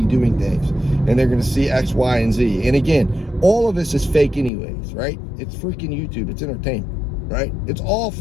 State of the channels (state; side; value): drops out; right; at 4.5 s